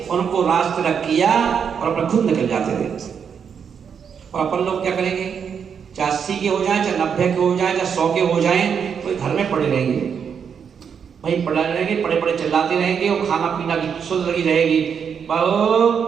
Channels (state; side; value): quieter; left; 7.1 dB